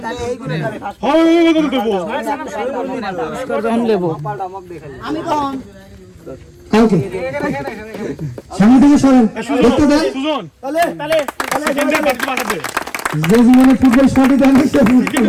তাহলে এই গুলো হয় দেবো পুরস্কার যখন নেব আমি কোন কালকে সামনে থেকে সরেন দেখতে দেন সুজন তাহলে সেকেন্ডের বাকি বাকি দে যে জীবনে ফুটবল শট দেন সে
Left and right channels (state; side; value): identical; both; correlation 1.00